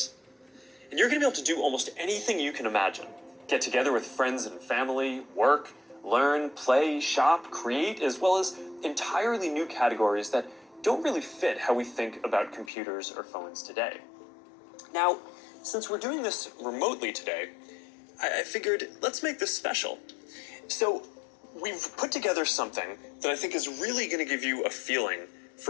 And you're going to be able to do almost anything you can imagine. Get together with friends and family, work, learn, play, shop, create, as well as entirely new categories that don't really fit how we think about computers or phones today. Now, since we're doing this remotely today, I figured let's make this special. So we've put together something that I think is really going to give you a feeling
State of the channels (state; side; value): drops out; right; at 12.7 s